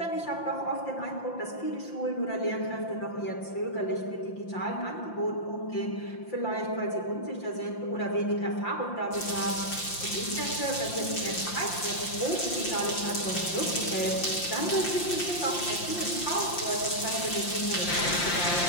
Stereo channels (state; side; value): late; right; 5.7 ms